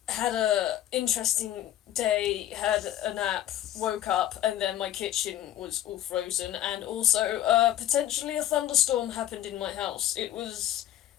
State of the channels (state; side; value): quieter; right; 12.5 dB